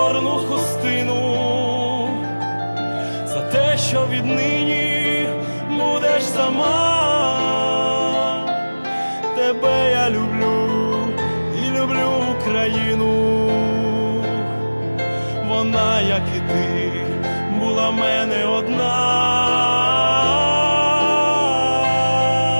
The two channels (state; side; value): inverted; both; correlation -1.00